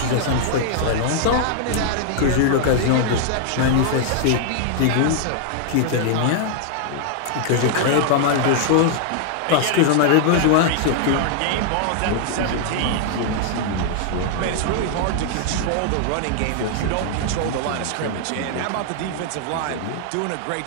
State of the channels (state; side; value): different; both; correlation 0.00